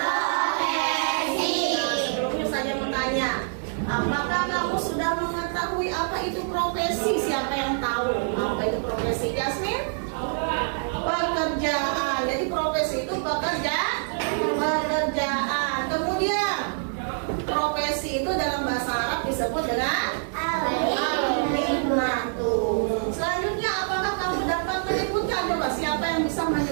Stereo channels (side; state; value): left; silent; digital silence